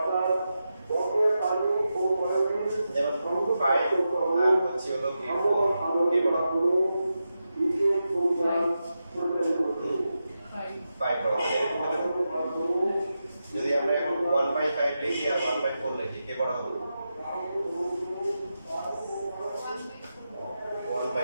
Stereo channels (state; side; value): inverted; both; correlation -0.89